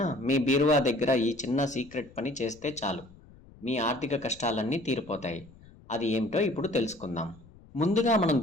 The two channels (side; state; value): left; noise; rumble, 23 dB below the sound